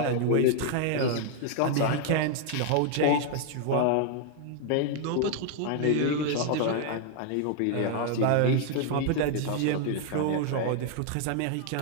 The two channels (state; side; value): different; both; correlation 0.00